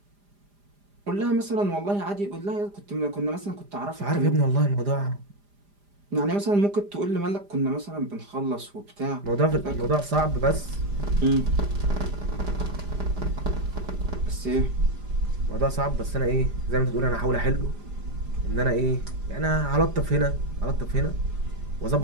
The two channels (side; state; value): left; late; 4.9 ms